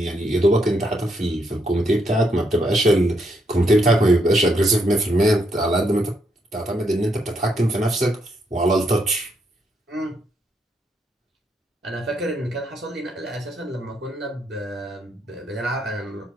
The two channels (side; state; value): both; normal; correlation 0.77